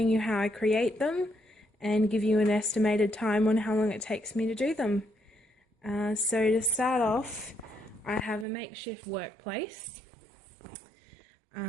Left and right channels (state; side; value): drops out; left; at 8.5 s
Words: you how I create them and give you an estimated time on how long it takes me to do them. So to start off, I have a makeshift workplace.